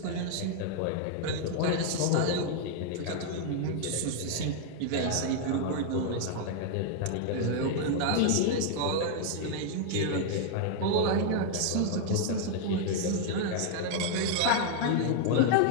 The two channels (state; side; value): different; both; correlation -0.01